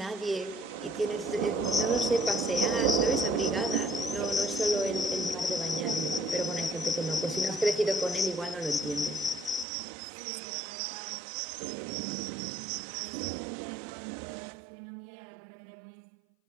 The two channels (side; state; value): left; drops out; at 9.7 s